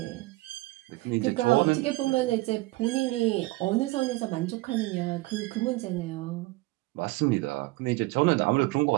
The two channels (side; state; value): left; quieter; 20.8 dB